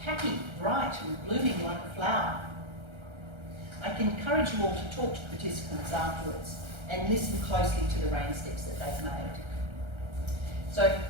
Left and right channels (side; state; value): left; late; 1.3 ms